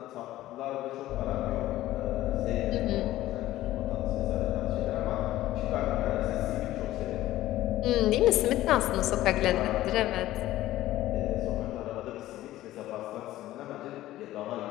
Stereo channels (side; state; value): right; quieter; 15.1 dB